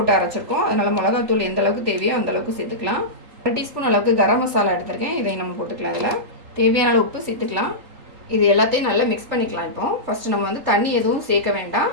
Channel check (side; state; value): left; late; 3.8 ms